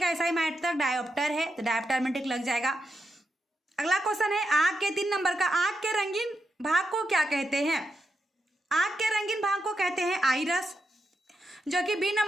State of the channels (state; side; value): normal; both; correlation 0.85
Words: एसआई मात्रक डायोप्टर है, तो डायोप्टर में टिक लग जाएगा। अगला क्वेश्चन है, आंख के 3 नंबर का, आंख के रंगीन भाग को क्या कहते हैं। आंख के रंगीन भाग को कहते हैं आइरस, जो कि बी